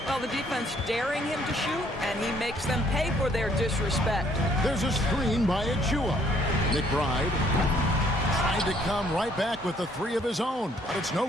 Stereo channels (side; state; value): both; normal; correlation 0.64